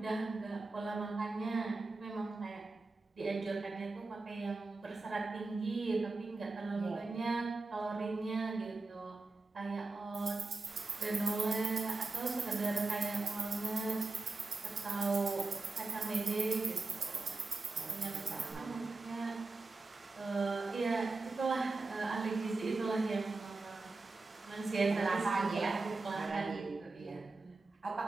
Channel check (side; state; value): left; quieter; 3.5 dB